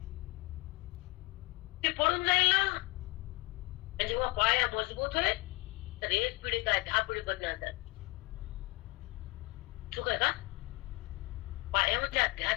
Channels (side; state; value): right; quieter; 23.8 dB